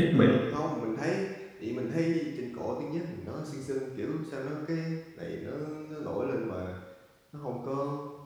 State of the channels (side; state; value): both; identical; correlation 1.00